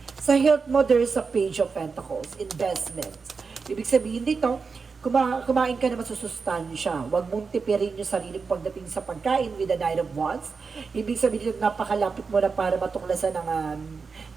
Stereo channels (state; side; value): quieter; left; 5.0 dB